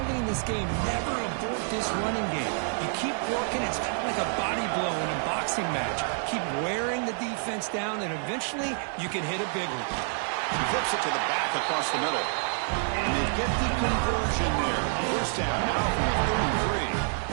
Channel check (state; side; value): silent; left; 55 dB below the other